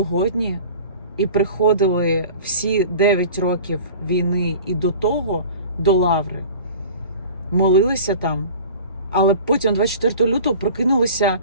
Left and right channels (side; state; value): both; inverted; correlation -0.41